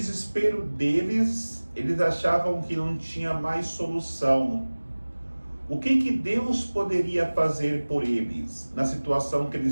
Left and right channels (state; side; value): inverted; both; correlation -1.00